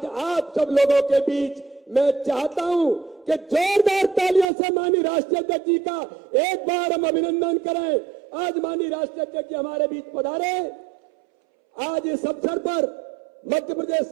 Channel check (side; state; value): left; drops out; at 4.5 s